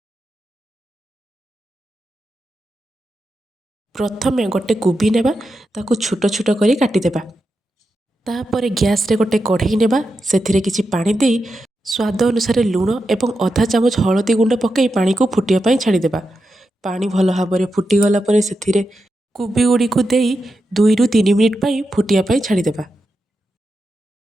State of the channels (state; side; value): normal; both; correlation 0.88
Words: प्रथमे गोटे कोबी नेबा ताकू छोट छोट करी काटिदेबा। तापर गैस रे गोटे कढ़ई नेबा सेथिरे किछि पानी देई स्वाद अनुसार लूण एवं आधा चामच हळदी गुंड पकई पानी को फुटिया पई छाड़ीदेबा। पानी भल भाव फुटी गला परे सेथिरे कोबी गुड़ी को देई 2 रु 3 मिनिट पई फुटिया पई छाड़ीदेबा।